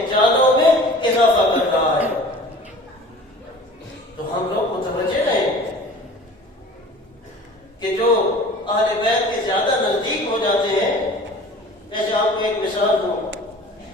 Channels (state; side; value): normal; both; correlation 0.43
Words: جالوں میں اضافہ کر رہا ہے۔ تو ہم لوگ متوجہ رہیں کہ جو اہل بیت کے زیادہ نزدیک ہو جاتے ہیں، جیسے آپ کو ایک مثال دوں